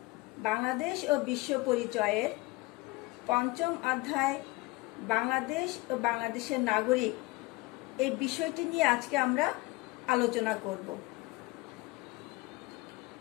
বাংলাদেশ ও বিশ্ব পরিচয়ের পঞ্চম অধ্যায় বাংলাদেশ ও বাংলাদেশের নাগরিক এই বিষয়টি নিয়ে আজকে আমরা আলোচনা করব।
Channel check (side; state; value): right; quieter; 22.4 dB